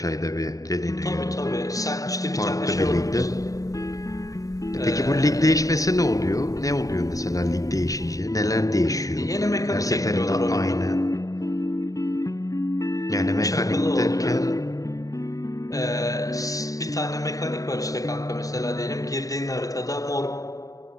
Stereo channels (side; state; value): right; late; 0.16 ms